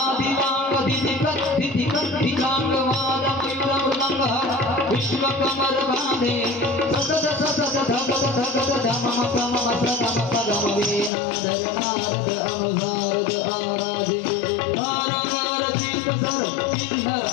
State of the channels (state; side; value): drops out; right; at 11.1 s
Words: दिदिकत दिदिकत दिलांग वाद मयूर मृदंग विश्व कमर बांधे ससद ससद धगद धगद धमम कमम सदम पदम वीणाधर नारद अनुसारद आराधे तारंगर सिंह सर किन्नर